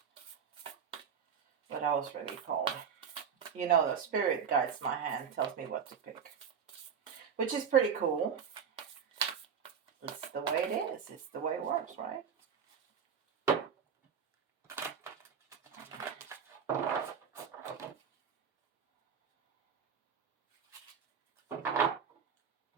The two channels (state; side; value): quieter; left; 7.0 dB